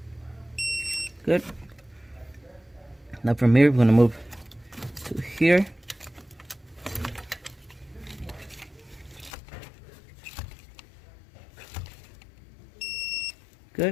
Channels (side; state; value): right; drops out; at 9.3 s